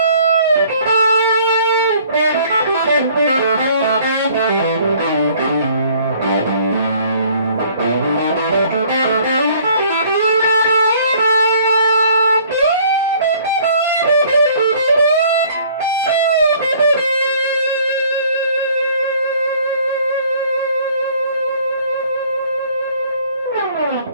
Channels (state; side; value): inverted; both; correlation -0.56